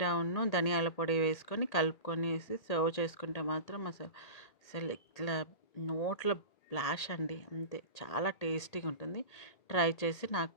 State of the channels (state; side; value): late; right; 1.8 ms